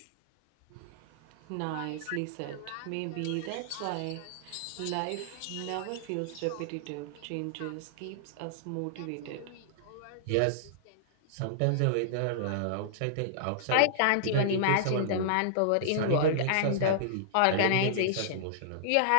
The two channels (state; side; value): different; both; correlation -0.02